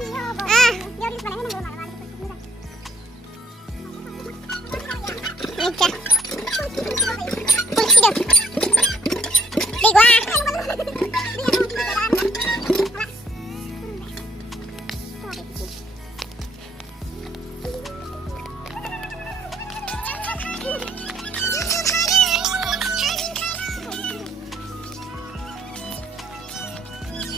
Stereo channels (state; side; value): normal; both; correlation 0.66